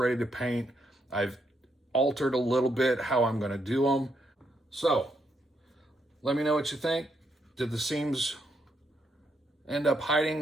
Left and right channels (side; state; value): both; normal; correlation 0.78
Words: to paint. I've altered a little bit how I'm going to do them. So let me know what you think. Did the seams end up